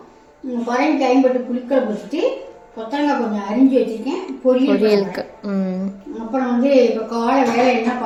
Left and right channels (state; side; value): identical; both; correlation 1.00